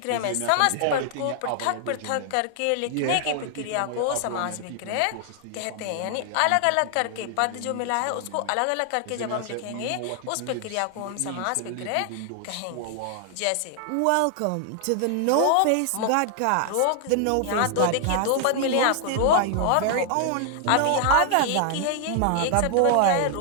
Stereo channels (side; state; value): both; different; correlation 0.00